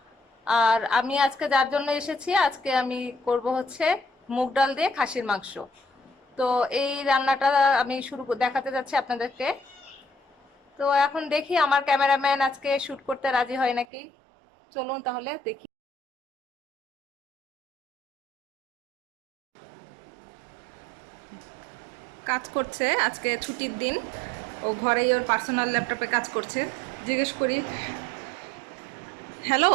আর আমি আজকে যার জন্য এসেছি, আজকে আমি করব হচ্ছে মুগ ডাল দিয়ে খাসির মাংস। তো এই রান্নাটা আমি দেখাতে যাচ্ছি আপনাদেরকে। তো এখন দেখি আমার ক্যামেরাম্যান আজকে শুট করতে রাজি হয় নাকি। চলুন তাহলে দেখি। কাজ করছে, আজকে ছুটির দিন। ও ঘরেই ওর পার্সোনাল ল্যাপটপে কাজ করছে। জিজ্ঞেস করি, হ্যালো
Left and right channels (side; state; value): left; drops out; at 13.9 s